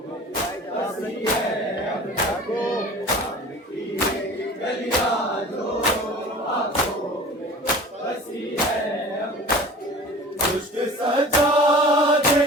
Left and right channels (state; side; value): normal; both; correlation 0.41